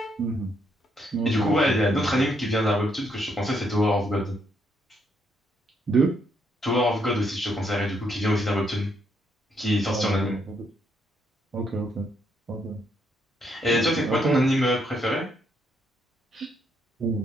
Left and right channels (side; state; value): both; normal; correlation 0.74